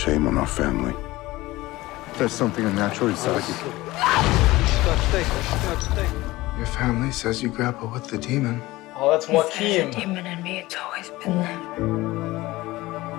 shame on our family. There's something unnatural inside you. Your family says you grapple with the demon. Oh, that's Joaquin. There's a demon in me. It's always been there.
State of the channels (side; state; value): right; quieter; 18.9 dB